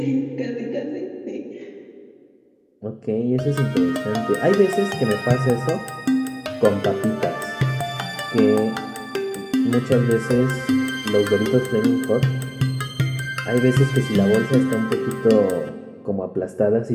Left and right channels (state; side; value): identical; both; correlation 1.00